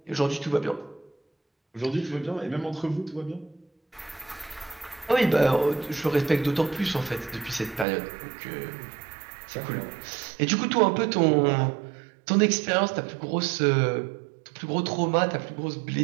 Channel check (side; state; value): left; drops out; at 7.9 s